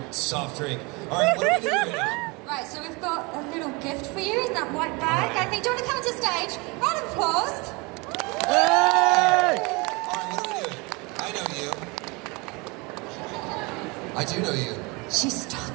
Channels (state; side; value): quieter; left; 27.3 dB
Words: soft drink. All right, what are we doing right now? Right, so we've got a little gift for you in that white bag. I think, do you want to come to stage? Round of applause. Hey! All right, what are we doing? I know you. I do know you. She's